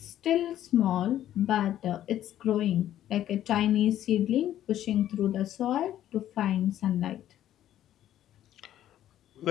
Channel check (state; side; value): quieter; right; 12.0 dB